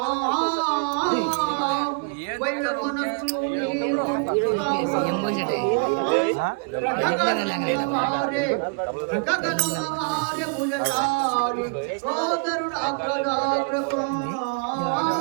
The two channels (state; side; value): quieter; left; 35.2 dB